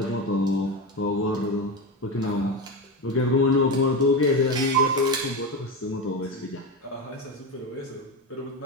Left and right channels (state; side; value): normal; both; correlation 0.18